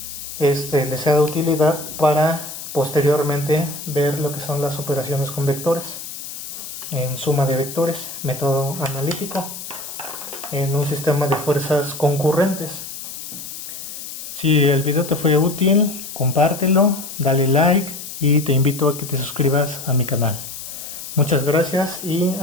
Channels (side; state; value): left; noise; hiss, 10 dB below the sound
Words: les sea de utilidad para posteriormente ver lo que son las operaciones con vectores en suma de vectores, método analítico, en un sistema de fuerzas concurrentes. Si el video te fue útil, compártelo, dale like y te invito a que te suscribas a mi canal. Muchas gracias y